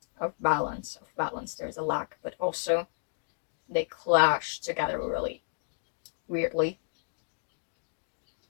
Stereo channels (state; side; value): silent; right; digital silence